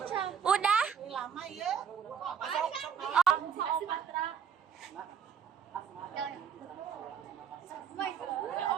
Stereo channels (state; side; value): quieter; left; 7.6 dB